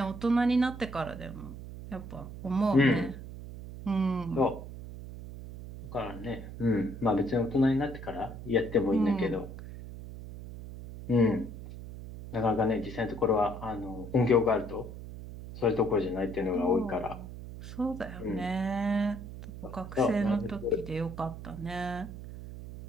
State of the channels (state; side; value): noise; right; hum, 11 dB below the sound